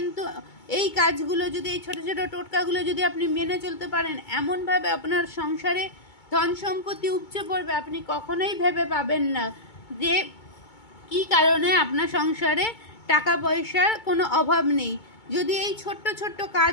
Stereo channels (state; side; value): late; right; 2.2 ms